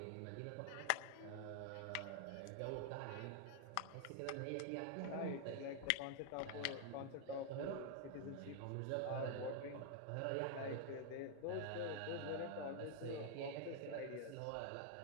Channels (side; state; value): both; different; correlation 0.00